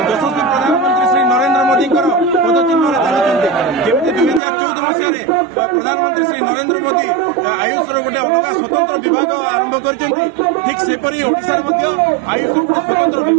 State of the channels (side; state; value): left; drops out; at 4.4 s